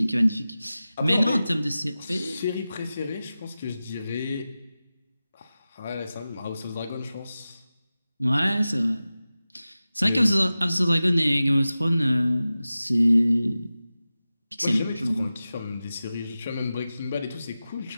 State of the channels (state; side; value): inverted; both; correlation -0.95